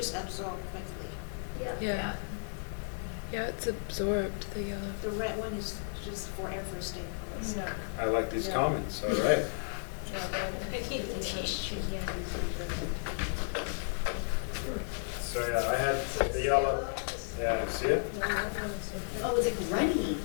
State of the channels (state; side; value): silent; right; digital silence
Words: absorbed quickly. Yeah, it's absorbed. The red one is just forever staying close. Yeah. I like these comments. All right. Yeah, but I keep the tissue. So yeah, I had the yellow. Yeah, see it? Oh, it's like runny.